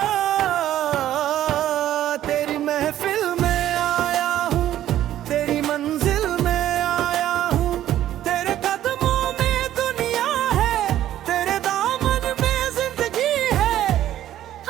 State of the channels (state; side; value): quieter; left; 12.4 dB